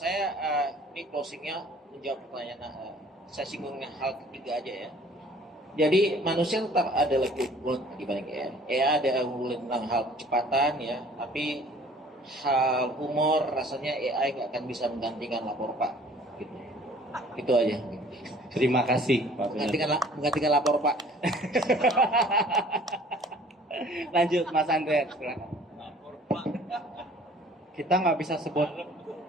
ini closingnya menjawab pertanyaan. Saya singgung hal ketiga aja ya. Jadi manusia tetap ada lebih unggul dibanding AI. AI ada unggul tentang hal kecepatan ya, tapi hal humor rasanya AI nggak akan bisa menggantikan lapor Pak. Gitu. Itu aja. Terima kasih Pak Bernardino. Menggantikan lapor Pak. Lanjut Mas Andreas. Silakan. Kita nggak bisa sebut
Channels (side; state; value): both; normal; correlation 0.53